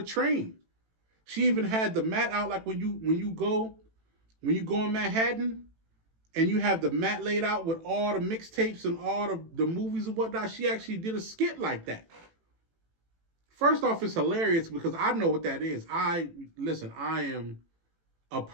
train. She even had the mat out, like when you go in Manhattan and you have the mat laid out with all the mixtapes and all the movies and whatnot. She actually did a skit like that. First off, it's hilarious because I know what that is. I am a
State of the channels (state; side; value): late; left; 18 ms